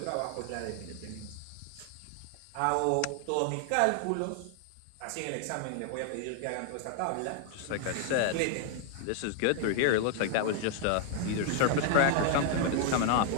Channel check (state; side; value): different; both; correlation 0.00